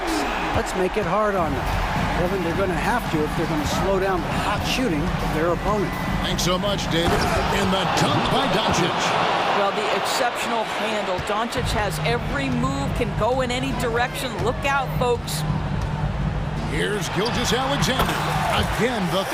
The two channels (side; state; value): both; identical; correlation 1.00